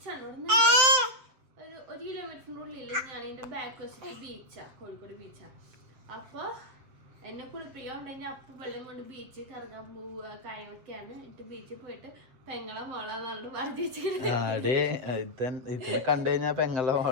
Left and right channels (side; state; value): left; late; 7.8 ms